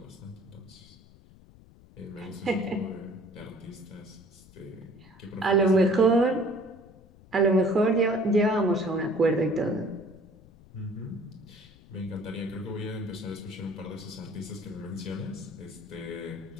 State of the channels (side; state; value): left; noise; rumble, 24 dB below the sound